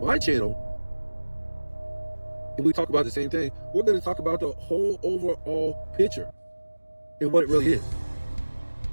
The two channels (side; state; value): both; inverted; correlation -1.00